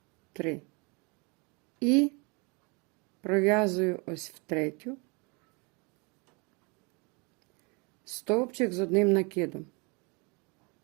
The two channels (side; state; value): left; quieter; 30.7 dB